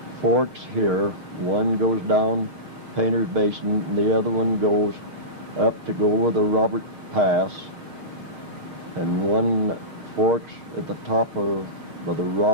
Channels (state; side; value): late; left; 6.5 ms